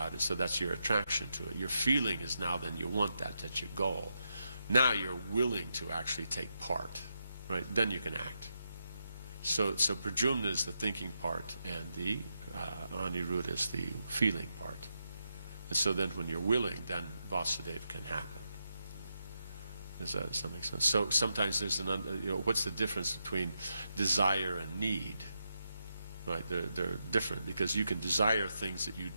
it, so that's your attraction to it. Your feeling is now then you want that's your goal. Now you're willing to actually take part, right? Then you can act. So Pradyumna is the thinking part, and the Aniruddha is the feeling part. And so then when you're willing, then Vasudeva can happen. Does that make sense? So sometimes there's what's the difference between desire and need? Right, they're different, because you can desire things that you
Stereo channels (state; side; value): inverted; both; correlation -0.84